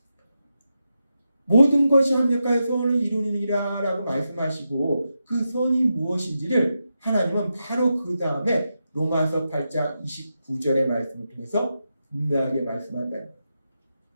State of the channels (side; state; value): both; inverted; correlation -0.88